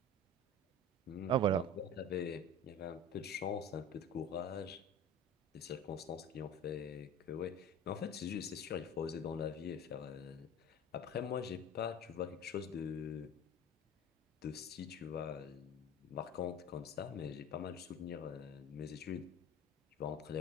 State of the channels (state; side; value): normal; both; correlation 0.36